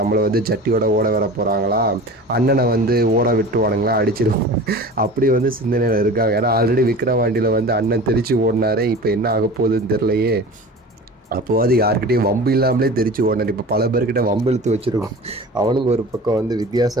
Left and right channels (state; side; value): normal; both; correlation 0.37